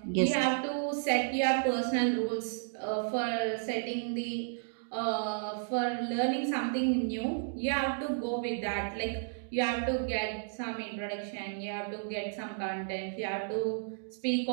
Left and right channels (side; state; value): left; silent; digital silence